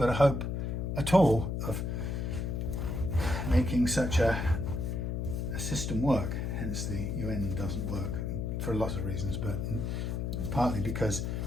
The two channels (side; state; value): left; noise; hum, 1 dB below the sound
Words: a hope at all of making such a system work. Hence the UN doesn't work for lots of reasons, but partly because